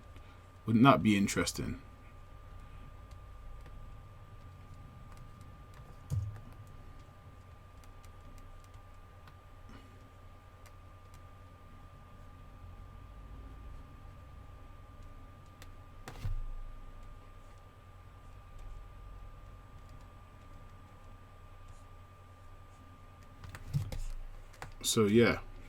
Wouldn't that be interesting? So yeah,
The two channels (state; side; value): identical; both; correlation 1.00